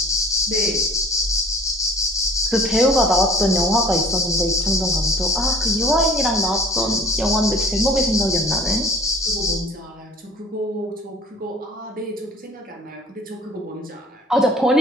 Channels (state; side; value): normal; both; correlation 0.48